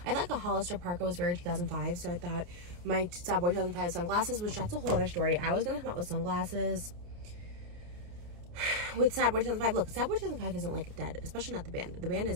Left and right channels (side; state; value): left; late; 29 ms